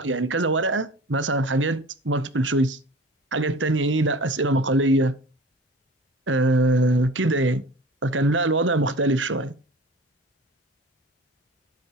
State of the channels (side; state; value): both; normal; correlation 0.39